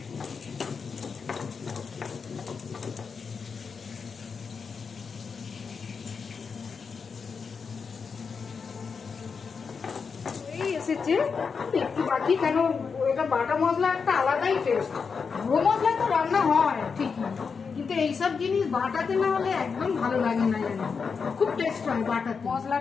এসেছে একটু বাকি, কেন এটা বাটা মশলা একটা আলাদাই টেস্ট। গুঁড়ো মশলা তো রান্না হয় ঠিকই, কিন্তু এইসব জিনিস বাটাতে না হলে একদম ভালো লাগে না, জানি খুব টেস্ট হয় বাটাতে।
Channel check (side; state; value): right; quieter; 5.6 dB